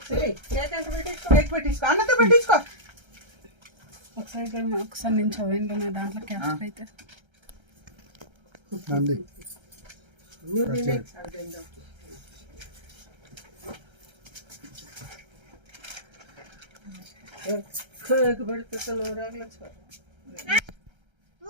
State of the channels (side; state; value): left; late; 1.3 ms